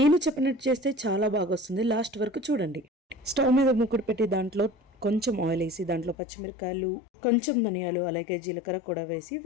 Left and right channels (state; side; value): drops out; right; at 6.2 s